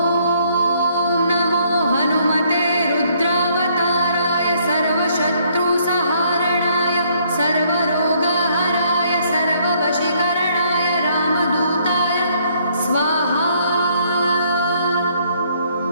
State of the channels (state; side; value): inverted; both; correlation -0.67